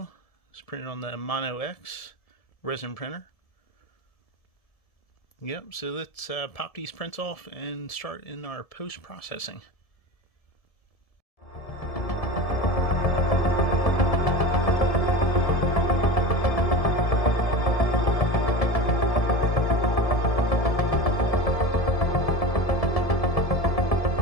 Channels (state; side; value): late; right; 1.7 ms